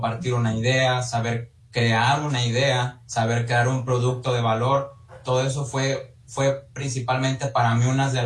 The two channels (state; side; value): identical; both; correlation 1.00